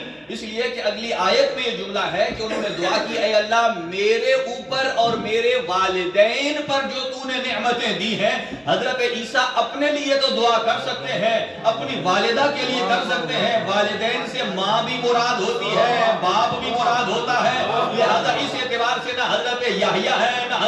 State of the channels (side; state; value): both; identical; correlation 1.00